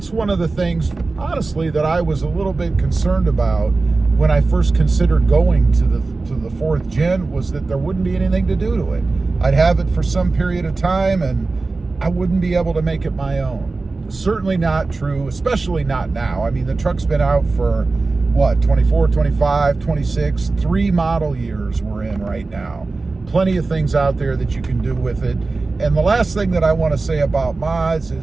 one of the things, honestly, that I was a little bit concerned about when I first considered going to the fourth gen, was that there wouldn't be anything to do to it. I'd have it for some period of time and I wouldn't be able to make it my own. Certainly not true, especially not now. I mean, the truck's been out for what, 24, 25, 26, 3 model years we're in right now. Plenty of things out there that you can do with it. And the last thing that I want to say about mods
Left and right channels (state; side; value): quieter; left; 3.7 dB